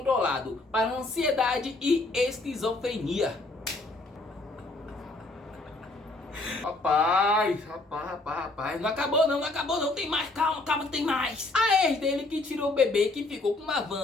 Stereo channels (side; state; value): right; quieter; 3.0 dB